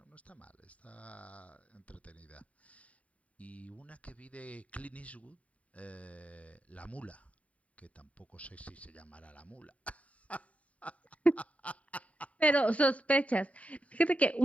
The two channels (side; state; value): right; late; 0.067 ms